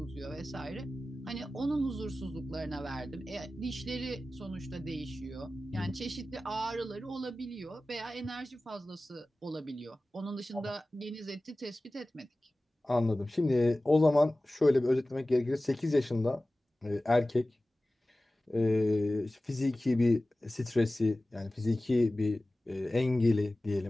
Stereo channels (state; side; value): normal; both; correlation 0.96